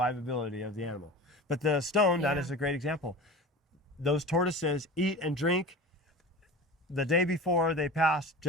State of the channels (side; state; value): both; normal; correlation 0.34